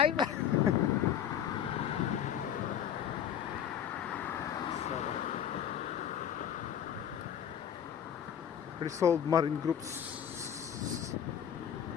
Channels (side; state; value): right; quieter; 9.3 dB